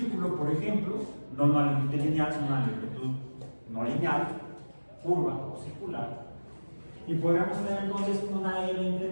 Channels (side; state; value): both; inverted; correlation -1.00